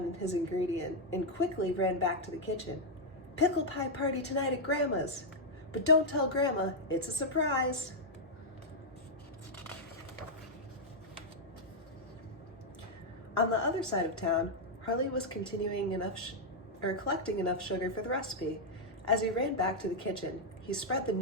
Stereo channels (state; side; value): normal; both; correlation -0.03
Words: his ingredient and quickly ran back to the kitchen. "Pickle pie party tonight at Grandma's. But don't tell Grandma, it's a surprise." On the other side of town, Harley was collecting enough sugar for the recipe. As he ran back to the kitchen, he spread the